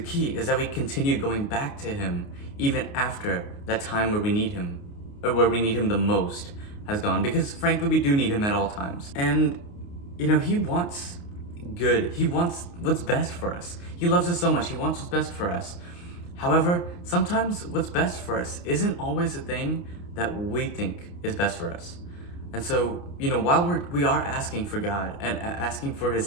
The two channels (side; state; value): right; late; 29 ms